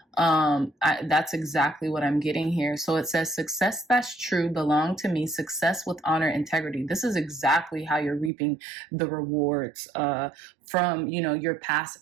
That's exactly what I'm getting here. So it says success that's true belong to me, success with honor, integrity. This is exactly how you're reaping the rewards from your past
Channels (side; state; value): left; drops out; at 8.3 s